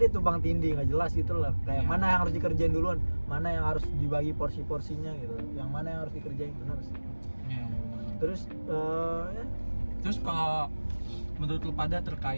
tumpang tindih, nggak jelas gitu lah. Kayak Iya. mana yang harus dikerjain duluan, mana yang harus dibagi porsi-porsinya gitu, yang mana yang harus dikerjain, benar sih. Iya, bener. Terus ya, Terus kalau menurut lu pada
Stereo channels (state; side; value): inverted; both; correlation -1.00